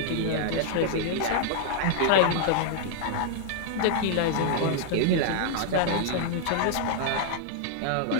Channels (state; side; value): different; both; correlation -0.01